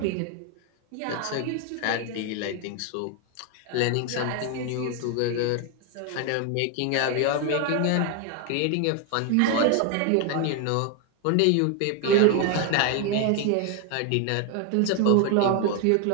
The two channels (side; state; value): both; different; correlation 0.01